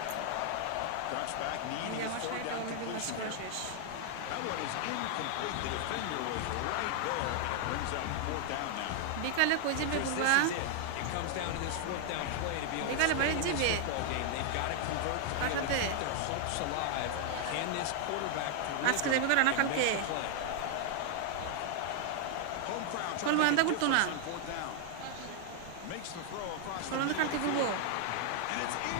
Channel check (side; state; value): both; different; correlation 0.00